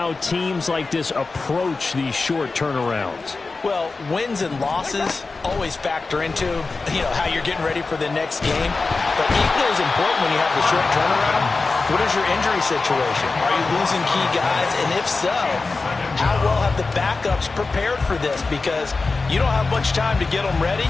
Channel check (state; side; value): quieter; right; 3.9 dB